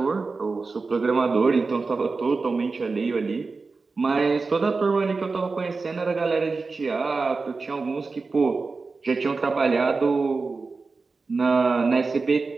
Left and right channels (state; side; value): quieter; left; 4.1 dB